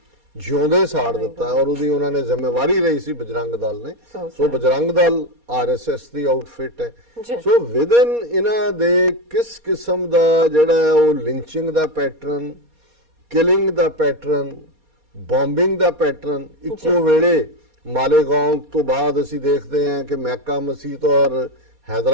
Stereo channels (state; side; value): late; left; 4.2 ms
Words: ਜਿਉਂਦੇ ਸਾੜ ਦਿੱਤਾ, ਔਰ ਉਹਦੀ ਉਹਨਾਂ ਨੇ ਜ਼ਿੰਮੇਵਾਰੀ ਲਈ ਸੀ ਬਜਰੰਗ ਦਲ ਨੇ। ਸੋ ਬਜਰੰਗ ਦਲ ਆਰਐਸਐਸ ਦੀ ਆਊਟਫਿਟ ਹੈ। ਸੋ ਵਿਦਨ ਇਹਨਾਂ ਦੇ ਕਿਸ ਕਿਸਮ ਦਾ ਜਿਹੜਾ ਉਹ ਲਿੰਚਿੰਗ ਦਾ ਪੈਟਰਨ, ਕਿਲਿੰਗ ਦਾ ਪੈਟਰਨ, ਬੰਬਿੰਗ ਦਾ ਪੈਟਰਨ, ਇੱਕੋ ਵੇਲੇ ਮਾਲੇਗਾਉਂ ਤੋਂ ਬਾਅਦ ਅਸੀਂ ਦੇਖਦੇ ਹਾਂ ਕਿ ਮੈਕਾ ਮਸਜਿਦ ਔਰ